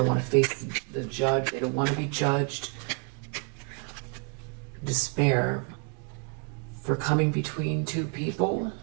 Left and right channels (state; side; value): quieter; left; 37.3 dB